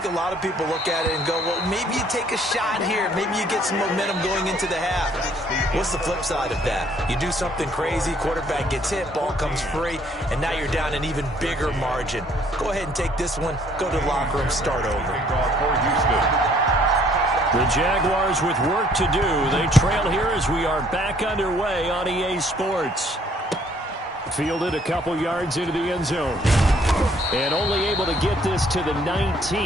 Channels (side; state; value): both; normal; correlation 0.62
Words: a lot of people look at it and go, well, maybe you take a shot here. Maybe you get some momentum going into the half. What's the flip side of that? You do something crazy, quarterback gets hit, ball comes free, and now you're down an even bigger margin. Go ahead and take this one, go to the locker room, start over. For Houston. The Jaguars with work to do. They trail here as we are back underway on EA Sports. Fielded a couple yards into the end zone. And only able to get this to the